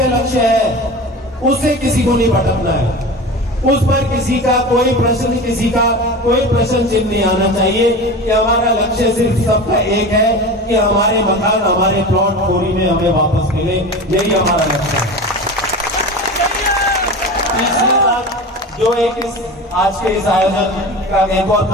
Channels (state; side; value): normal; both; correlation 0.30